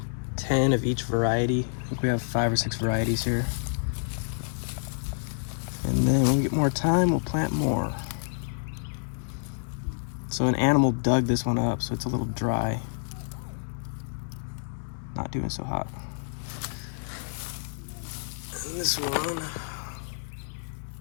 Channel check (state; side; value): silent; right; 59 dB below the other